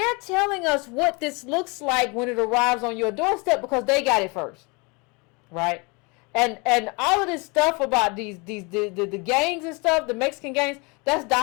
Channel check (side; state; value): right; quieter; 29.2 dB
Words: telling us what this looks like when it arrives on your doorstep because they got it first, right? And all of this stuff about the gangs and stuff, the Mexican gangs, that's